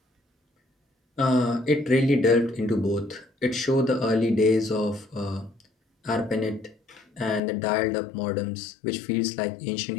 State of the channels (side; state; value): right; drops out; at 7.4 s